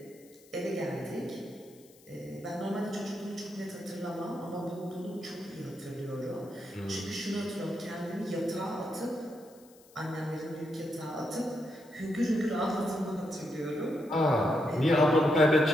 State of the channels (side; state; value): left; noise; hiss, 26 dB below the sound